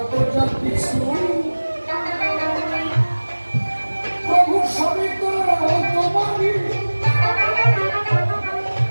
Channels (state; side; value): inverted; both; correlation -1.00